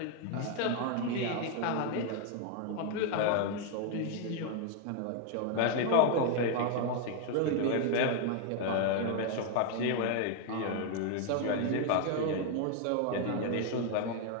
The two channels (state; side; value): different; both; correlation 0.01